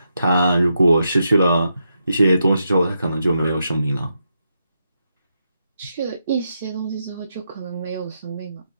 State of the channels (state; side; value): inverted; both; correlation -0.83